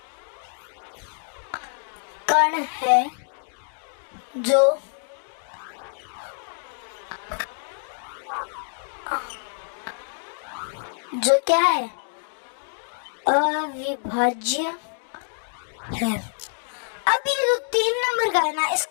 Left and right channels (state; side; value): silent; right; digital silence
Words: कण है जो क्या है? अविभाज्य है। अब ये जो 3 नंबर का है ना,